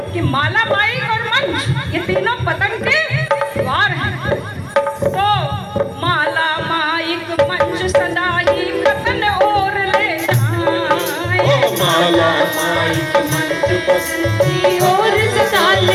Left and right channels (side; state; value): both; identical; correlation 1.00